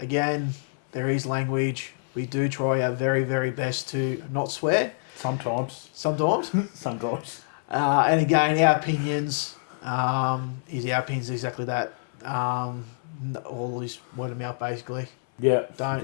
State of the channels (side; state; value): right; silent; 59 dB below the other